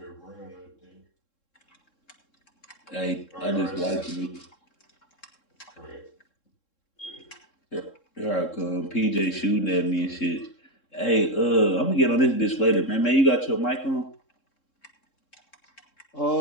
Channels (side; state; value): right; late; 3.7 ms